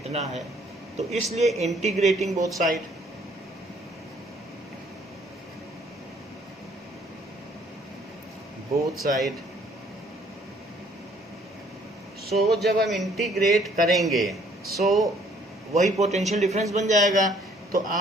है, तो इसलिए इंटीग्रेटिंग बोथ साइड, सो जब हम इंटीग्रेट करेंगे सो वही पोटेंशियल डिफरेंस बन जाएगा। तो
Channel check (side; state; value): both; normal; correlation 0.61